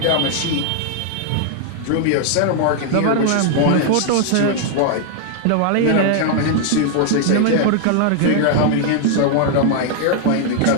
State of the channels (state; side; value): different; both; correlation 0.00